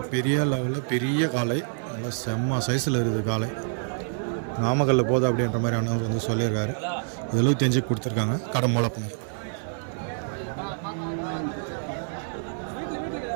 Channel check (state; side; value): silent; left; digital silence